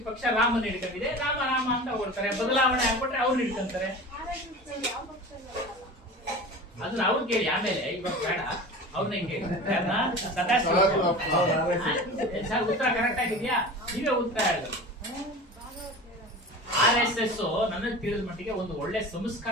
ಪಕ್ಷ ರಾಮನ ಹಿಡ್ಕೊಂಡಿದೆ, ರಾಮ ರಾಮ ಅಂತ ಹೊಗಳ್ತಾರೆ, ಬದಲಾವಣೆ ಆಗ್ಬಿಟ್ರೆ ಅವ್ರು ಹಿಡ್ಕೊಂತಾರೆ. ಅದನ್ನ ಅವ್ರು ಕೇಳಿ, ಆಮೇಲೆ ಇವಾಗ ಬೇಡ ಅವ್ರನ್ನ ಕೇಳಿ. ಸರ್ ಉತ್ತರ ಕರೆಕ್ಟ್ ಆಗಿದ್ಯಾ? ನೀವೇ ಉತ್ತರ ಹೇಳಿದ್ರು. RSS ನನಗೆ ತಿಳಿದ ಮಟ್ಟಿಗೆ ಒಂದು ಒಳ್ಳೆ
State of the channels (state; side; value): normal; both; correlation 0.35